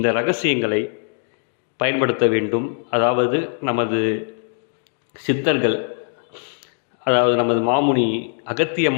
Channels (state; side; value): silent; right; digital silence